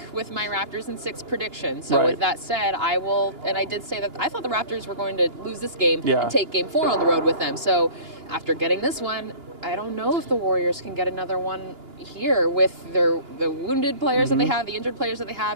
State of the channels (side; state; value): left; late; 2.9 ms